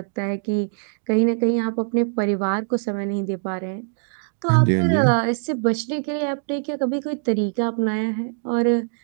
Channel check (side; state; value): left; silent; digital silence